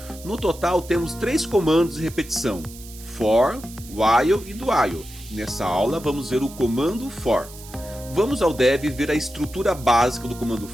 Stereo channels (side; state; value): right; noise; hiss, 17 dB below the sound